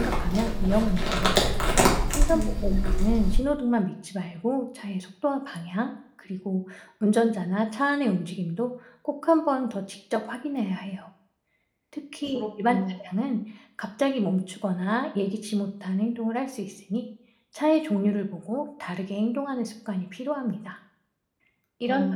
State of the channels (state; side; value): identical; both; correlation 1.00